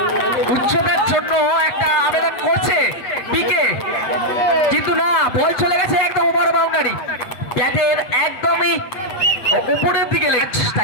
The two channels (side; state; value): right; late; 8.1 ms